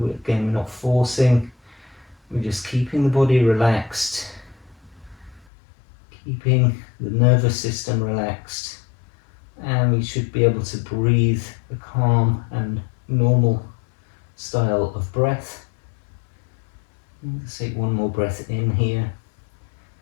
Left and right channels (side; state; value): right; drops out; at 5.5 s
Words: we're not forcing, we're just keeping the body relaxed, keeping the nervous system relaxed, and we should be able to breathe a calm and normal style of breath. Let's take one more breath in here